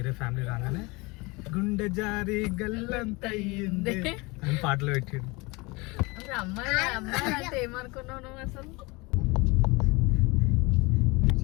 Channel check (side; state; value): right; quieter; 25.4 dB